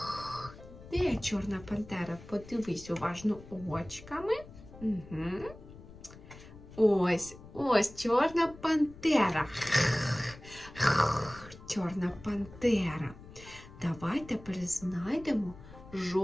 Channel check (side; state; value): left; noise; rumble, 18 dB below the sound